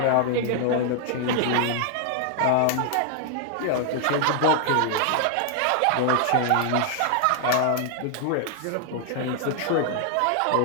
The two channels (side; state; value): both; different; correlation 0.00